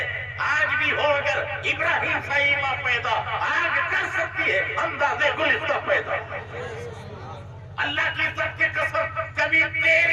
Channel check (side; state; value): both; identical; correlation 1.00